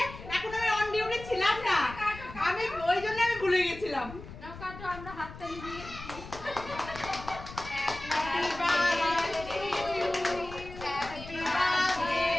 এখন আমি অন ডিউটি ছিলাম না, আমি ওই জন্য আমি ভুলে গেছিলাম। আমরা হাততালি দিয়ে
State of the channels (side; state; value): left; noise; rumble, 14 dB below the sound